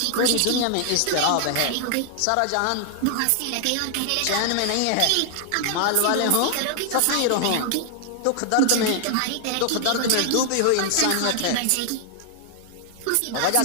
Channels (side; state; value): both; different; correlation 0.00